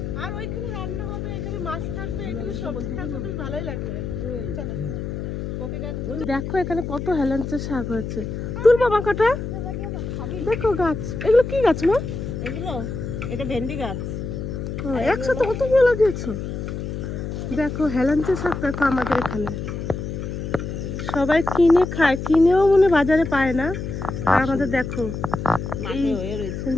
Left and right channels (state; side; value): noise; left; hum, 5 dB below the sound